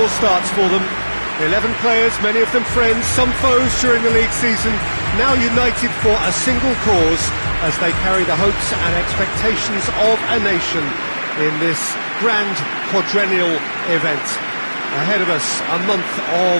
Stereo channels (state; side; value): inverted; both; correlation -1.00